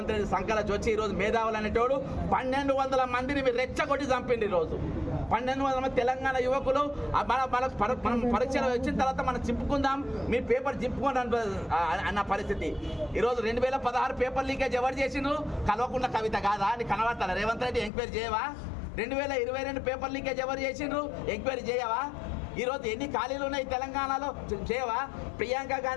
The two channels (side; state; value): right; drops out; at 17.9 s